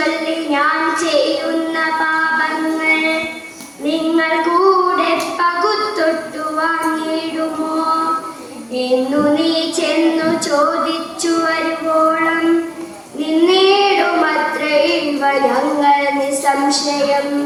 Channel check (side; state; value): both; identical; correlation 1.00